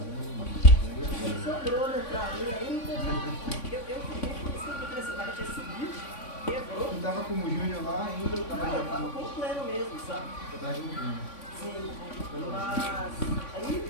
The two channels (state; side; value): late; right; 3.5 ms